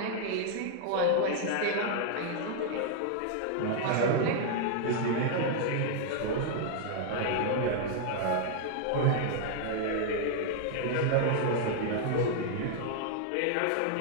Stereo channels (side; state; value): both; different; correlation 0.00